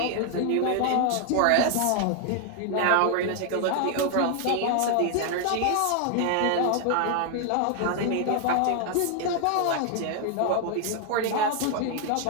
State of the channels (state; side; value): different; both; correlation 0.00